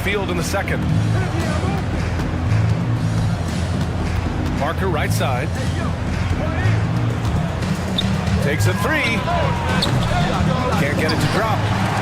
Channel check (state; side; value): identical; both; correlation 1.00